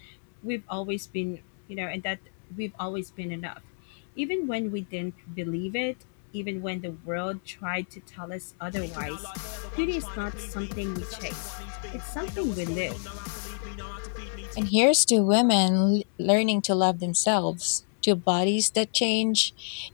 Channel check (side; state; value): right; silent; digital silence